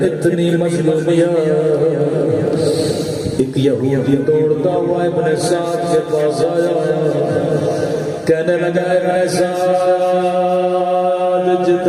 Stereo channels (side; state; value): both; identical; correlation 1.00